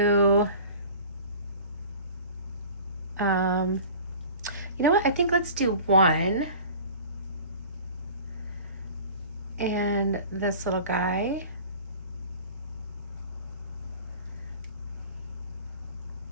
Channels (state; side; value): inverted; both; correlation -0.42